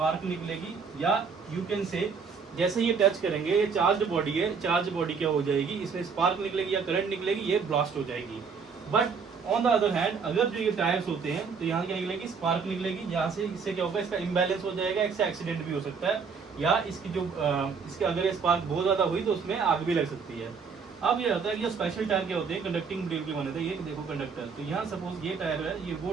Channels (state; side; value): quieter; left; 5.6 dB